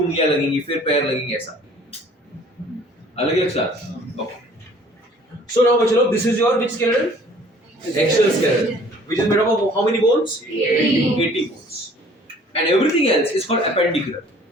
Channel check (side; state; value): both; normal; correlation 0.53